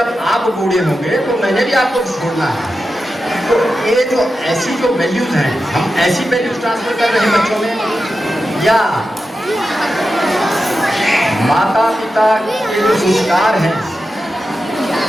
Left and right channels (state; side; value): normal; both; correlation 0.91